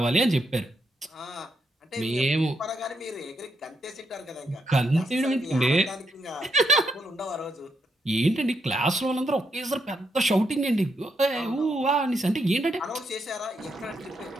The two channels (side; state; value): both; normal; correlation 0.79